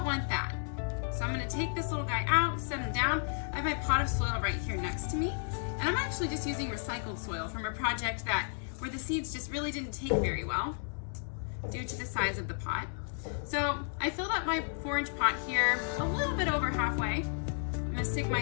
want that. So I'm going to take this little guy out, set him down. I have my pot of soil right here next to me. And I'm actually just using recycled soil from a project where the seeds just really didn't take very well due to the size of the pot. So I filled up my 4-inch pot here a little bit over halfway. I'm going to stick my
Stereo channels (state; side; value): silent; right; 56 dB below the other